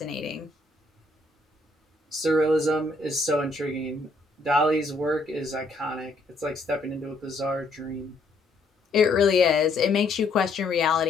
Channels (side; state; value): right; quieter; 3.1 dB